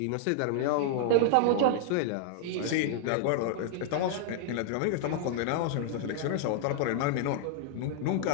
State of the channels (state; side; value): different; both; correlation -0.01